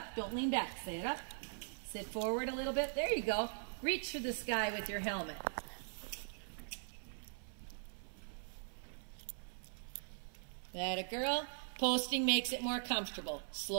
Don't lean back. Sit up. Sit forward a little bit. There you go. Reach for the sky with your helmet. That a girl. Posting makes it more comfortable.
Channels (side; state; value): left; silent; 50 dB below the other